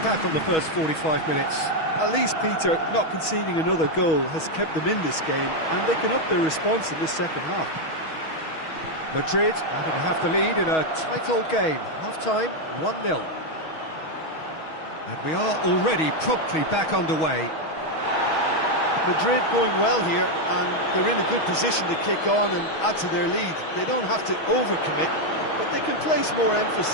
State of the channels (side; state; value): right; late; 6.3 ms